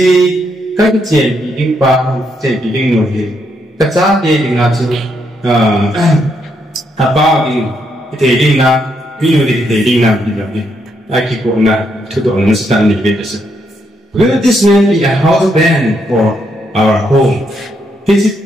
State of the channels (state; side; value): normal; both; correlation 0.77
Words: các chuyện bị đinh ba hàm chuyện bị đinh nội hệ. Các giá đề đinh là chứ ba đinh thể đinh là lý lộ thể đinh là bị lập đi. Ai kì cũng là thủ độ nó sẽ tăng đi về sự. Will this man be a house band for our home? Thế chứ